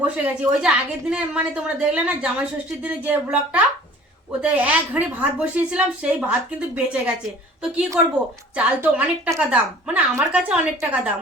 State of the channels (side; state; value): both; normal; correlation 0.49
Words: বসে গেছি। ওই যে আগের দিনে মানে তোমরা দেখলে না জামাই ষষ্ঠীর দিনে যে ব্লগটা, ওতে এক হাঁড়ি ভাত বসিয়েছিলাম, সেই ভাত কিন্তু বেঁচে গেছে। তো কি করব, চাল তো অনেক টাকা দাম, মানে আমার কাছে অনেক টাকা দাম।